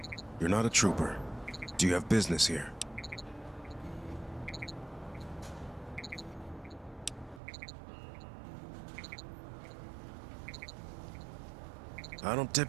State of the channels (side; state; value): left; drops out; at 7.4 s